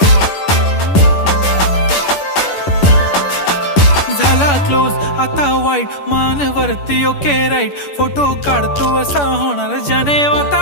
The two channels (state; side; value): late; right; 10 ms